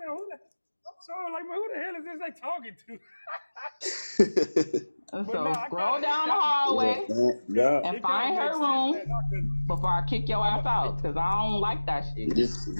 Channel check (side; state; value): both; inverted; correlation -1.00